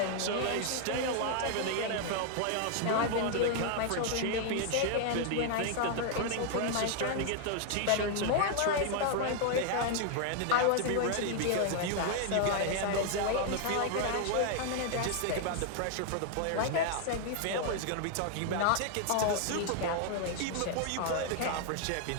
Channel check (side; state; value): both; different; correlation 0.00